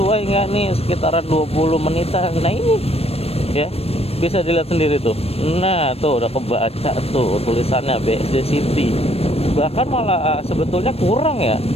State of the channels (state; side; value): late; right; 0.29 ms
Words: enggak nih sekitaran 20 menitan. Nah ini ya bisa dilihat sendiri tuh. Nah tuh udah kebaca tuh tulisannya BSD City. Bahkan malah sebetulnya kurang ya,